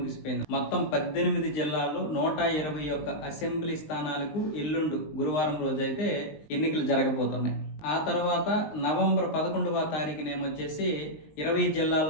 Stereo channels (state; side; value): late; right; 19 ms